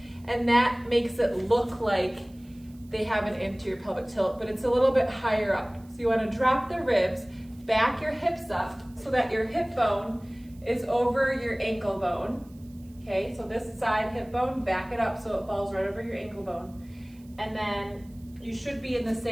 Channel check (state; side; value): noise; right; hiss, 29 dB below the sound